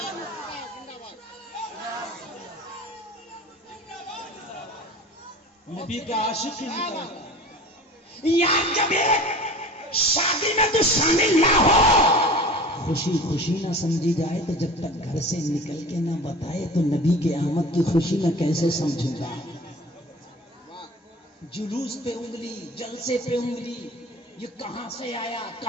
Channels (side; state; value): both; normal; correlation 0.39